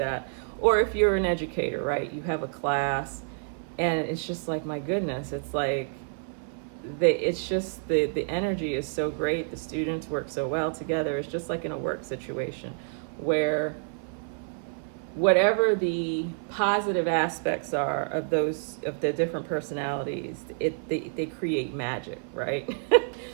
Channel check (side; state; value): left; silent; 56 dB below the other